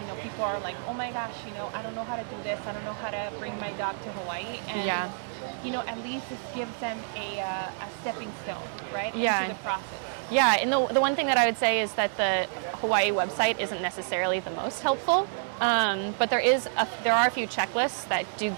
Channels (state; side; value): silent; left; digital silence